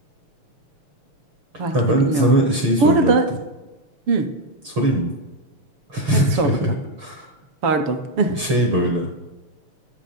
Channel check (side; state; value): left; late; 6.5 ms